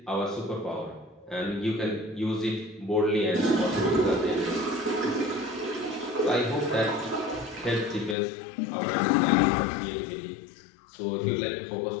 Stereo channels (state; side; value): drops out; right; at 8.2 s